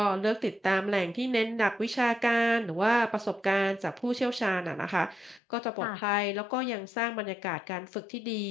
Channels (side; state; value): right; drops out; at 5.4 s